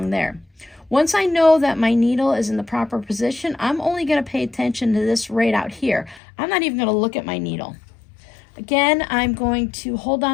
there. Once I know that my needle is in the proper position, I'm only going to pay attention to this right out here. I'm not even going to look at my needle. Again, I'm going to hold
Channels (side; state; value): right; drops out; at 6.2 s